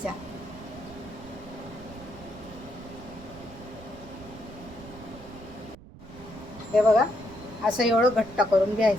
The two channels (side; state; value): right; noise; rumble, 18 dB below the sound